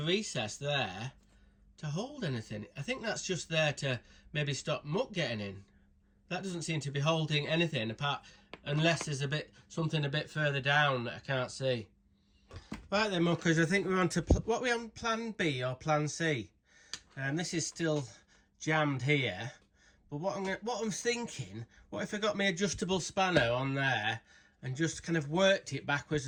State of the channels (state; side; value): identical; both; correlation 1.00